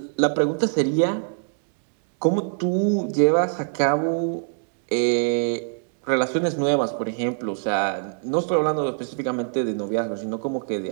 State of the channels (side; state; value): left; silent; 63 dB below the other